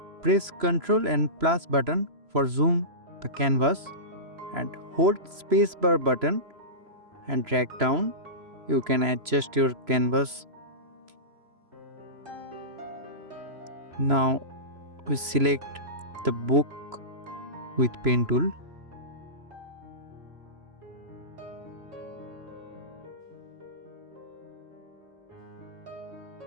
press Ctrl and plus button for zoom the canvas and hold spacebar button and drag down. You can adjust your canvas. Now we select the book with pen tool.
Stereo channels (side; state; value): left; late; 3.0 ms